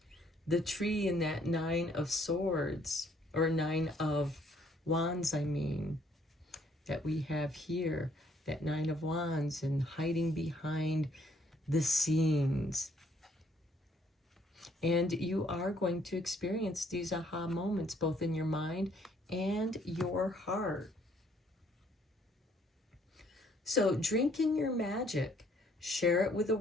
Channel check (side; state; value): both; normal; correlation 0.65